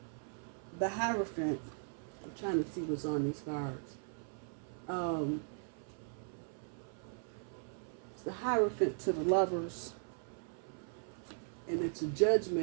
the Hierophant, I'm trying to see what's on these cards. It's the Hierophant to the Lovers, and it's a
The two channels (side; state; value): left; silent; 52 dB below the other